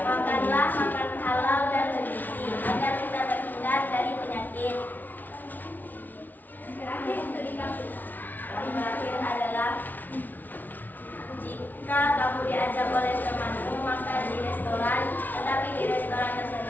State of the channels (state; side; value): late; right; 0.083 ms